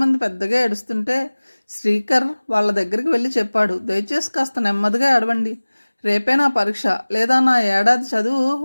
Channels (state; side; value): inverted; both; correlation -1.00